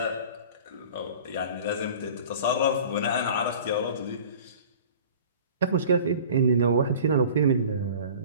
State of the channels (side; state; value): both; inverted; correlation -0.44